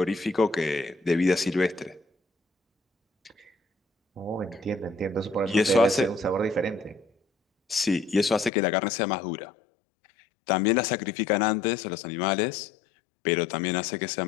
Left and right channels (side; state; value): right; drops out; at 8.5 s